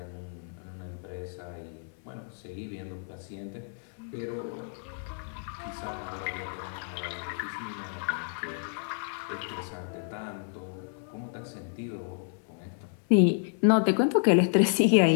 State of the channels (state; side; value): silent; right; 58 dB below the other